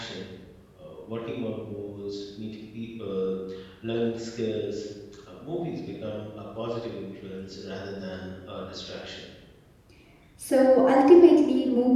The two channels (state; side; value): identical; both; correlation 1.00